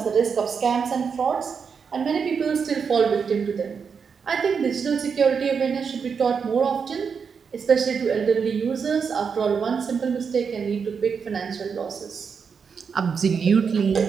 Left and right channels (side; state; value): left; quieter; 6.1 dB